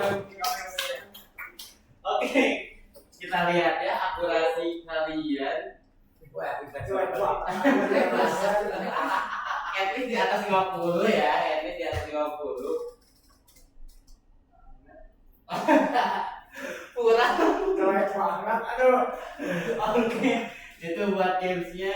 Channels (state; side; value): identical; both; correlation 1.00